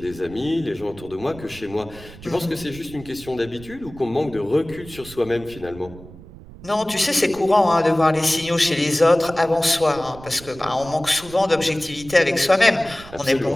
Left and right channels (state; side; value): noise; right; rumble, 18 dB below the sound